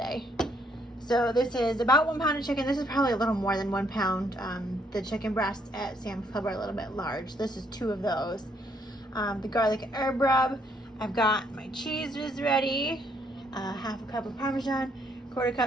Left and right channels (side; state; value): both; normal; correlation 0.70